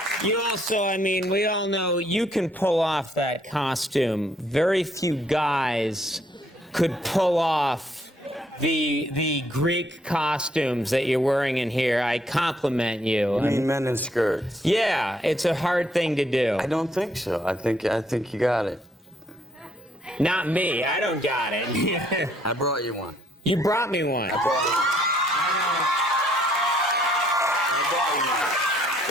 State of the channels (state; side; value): normal; both; correlation 0.68